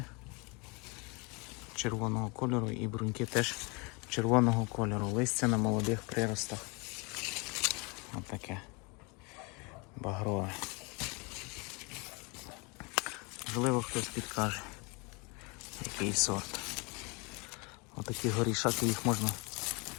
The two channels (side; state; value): right; quieter; 29.7 dB